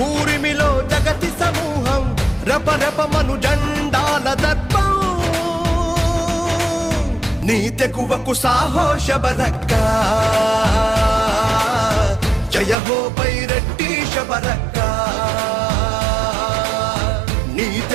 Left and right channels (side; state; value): left; drops out; at 12.8 s